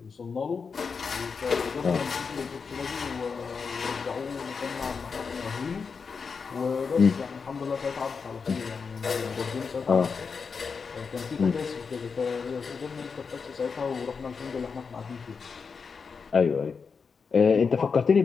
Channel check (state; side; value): quieter; right; 5.4 dB